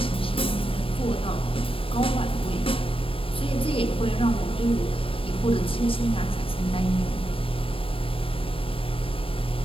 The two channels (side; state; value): right; late; 0.26 ms